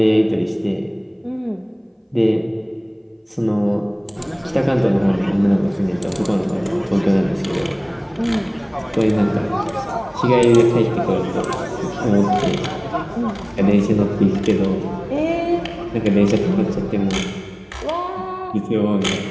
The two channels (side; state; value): both; identical; correlation 1.00